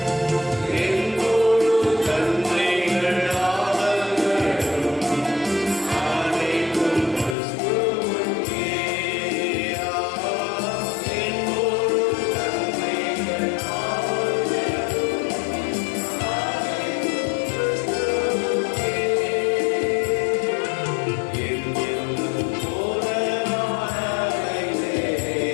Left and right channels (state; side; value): drops out; right; at 7.4 s